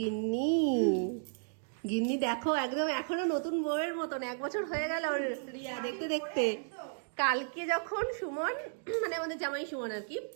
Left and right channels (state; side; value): silent; left; digital silence